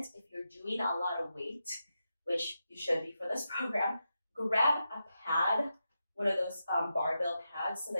If you're doing a lot of weight, which you should be for this program, grab a pad, one of those barbell pads, so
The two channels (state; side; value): inverted; both; correlation -0.88